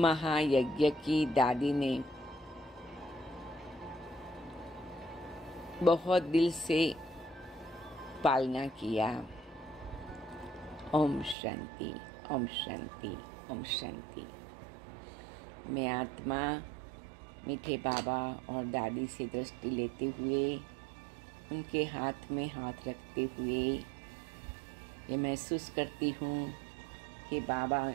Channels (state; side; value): drops out; left; at 11.4 s